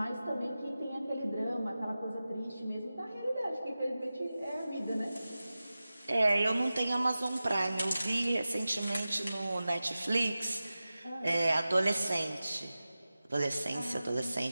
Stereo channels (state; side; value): inverted; both; correlation -0.95